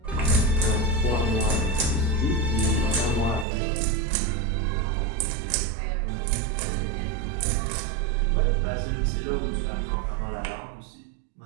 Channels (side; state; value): left; drops out; at 3.5 s